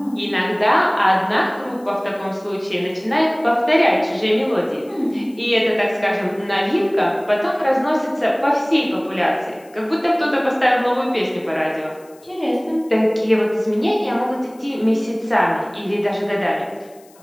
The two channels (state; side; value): noise; left; hiss, 28 dB below the sound